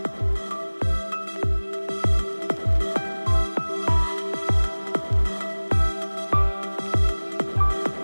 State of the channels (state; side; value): inverted; both; correlation -1.00